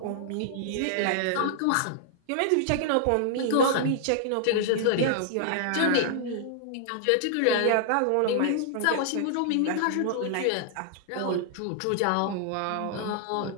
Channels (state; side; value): different; both; correlation -0.01